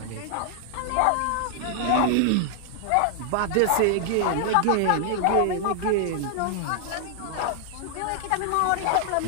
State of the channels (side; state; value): both; different; correlation 0.00